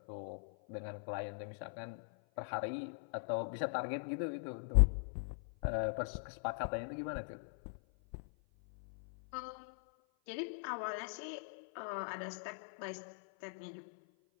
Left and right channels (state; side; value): silent; right; 50 dB below the other